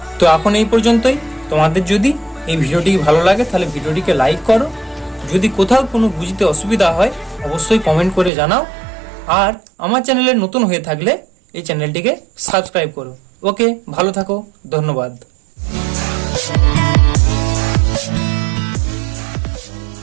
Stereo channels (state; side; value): drops out; left; at 8.3 s